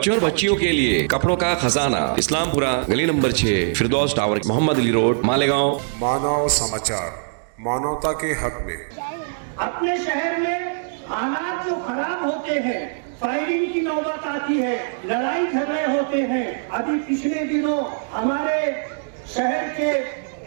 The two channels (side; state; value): left; silent; digital silence